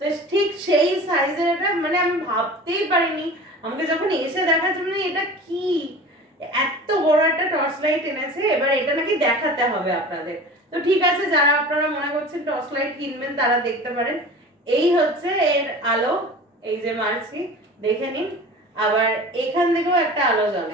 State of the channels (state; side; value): normal; both; correlation 0.38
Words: তো ঠিক সেই সাইজের এটা, মানে আমি ভাবতেই পারিনি, আমাকে যখন এসে দেখার জন্য এটা কি এত বড় একটা টর্চ লাইট এনেছে, এবার এটা নাকি দেখাতে হবে আপনাদের। তো ঠিক আছে, যারা আপনারা মনে করছেন টর্চ লাইট কিনবেন তারা দেখতে পারেন। এই হচ্ছে এর আলো, এই যে মারছি, দেখে নিন। আবার এখান থেকেও একটা আলো